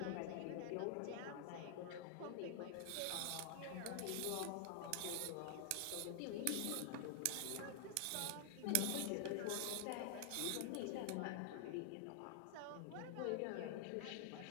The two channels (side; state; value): both; different; correlation 0.00